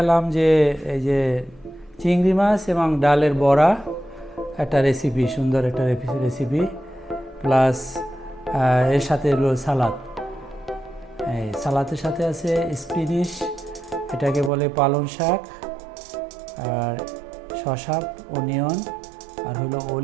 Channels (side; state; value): left; drops out; at 14.5 s